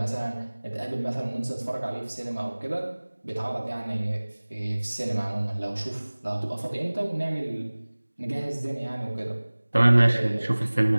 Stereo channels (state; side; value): inverted; both; correlation -1.00